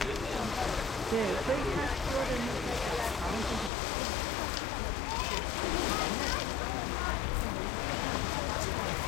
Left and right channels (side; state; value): right; drops out; at 3.7 s